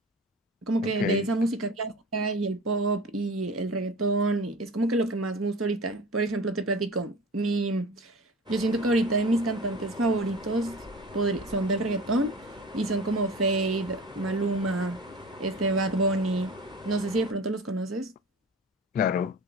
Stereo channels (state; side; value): normal; both; correlation 0.36